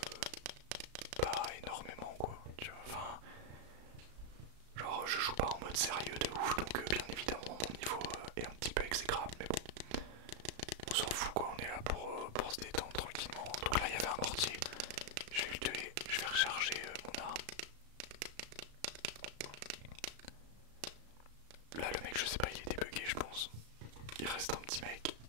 pas énormément quoi, tu vois, enfin genre je joue pas en mode sérieux de ouf donc bien évidemment mon niveau est un petit peu exécrable mais bon on s'en fout quoi, on est là pour se détendre tranquillement. Donc là il y avait un mortier, je vais le tuer, je vais recharger mon arme. là le mec je sais pas, il était bugué je pense. Il reste un petit mec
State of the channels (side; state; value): left; late; 35 ms